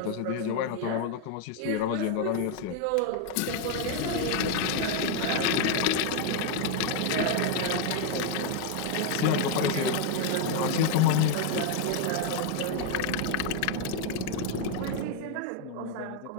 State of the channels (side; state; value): both; different; correlation 0.01